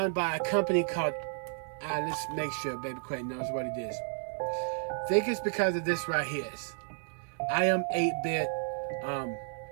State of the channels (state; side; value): silent; left; 56 dB below the other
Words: by a company called, let's make sure Baby Quayton knows what it is. I think it's because of this right here. I Am 8-Bit.